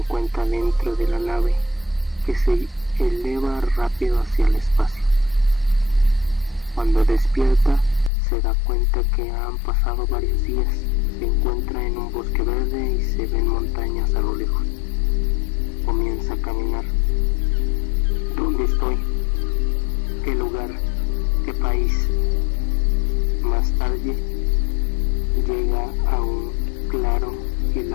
dentro de la nave, que se eleva rápido hacia el espacio. Cuando despierta, se da cuenta que han pasado varios días. Se encuentra en un bosque verde y se ven montañas a lo lejos. Comienza a caminar. ¿Dónde estoy? ¿Qué lugar? ¿Qué país? Más tarde llega a un claro y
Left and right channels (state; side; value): drops out; right; at 8.1 s